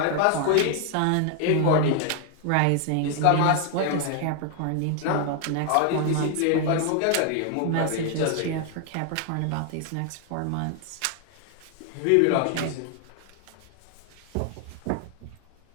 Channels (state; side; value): different; both; correlation 0.00